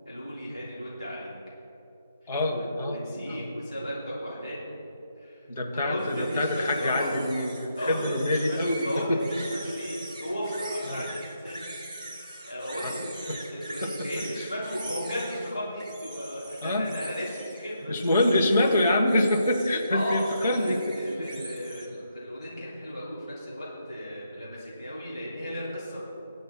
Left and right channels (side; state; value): both; inverted; correlation -0.78